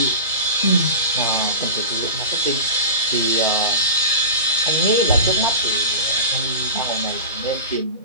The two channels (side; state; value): both; inverted; correlation -0.31